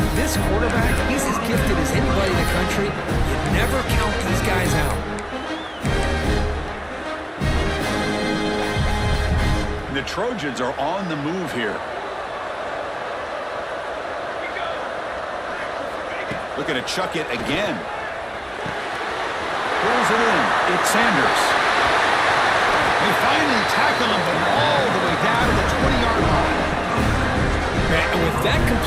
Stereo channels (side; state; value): both; identical; correlation 1.00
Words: this quarterback, he's as gifted as anybody in the country. You never count these guys out. The Trojans are on the move here. Looking to chuck it again. Pulls it in. It's Sanders. They finally tackle him, but all the way down to the 20-yard line. And with that